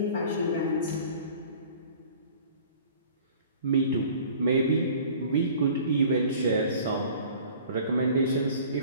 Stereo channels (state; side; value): inverted; both; correlation -0.47